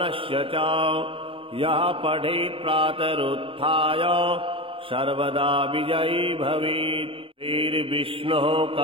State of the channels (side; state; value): left; late; 0.26 ms